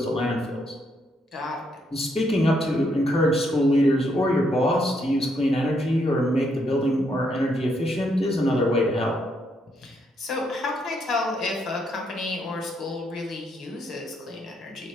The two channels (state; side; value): normal; both; correlation 0.75